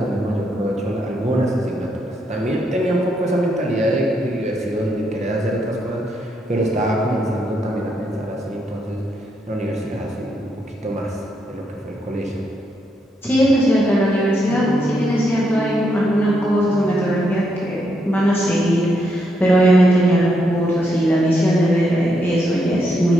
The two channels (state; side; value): normal; both; correlation 0.78